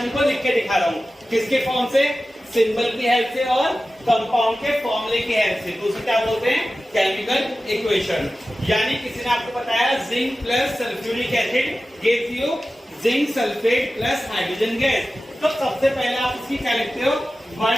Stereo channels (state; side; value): normal; both; correlation 0.95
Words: को लिख के दिखा रहा हूं, किसके फॉर्म से? सिंबल की हेल्प से और कंपाउंड के फॉर्मूले की हेल्प से, तो उसे क्या बोलते हैं? Chemical equation. यानी किसी ने आपको बताया zinc plus sulphuric acid gives you zinc sulphate plus hydrogen gas, तो सबसे पहले आप इसकी क्या लिखते हो?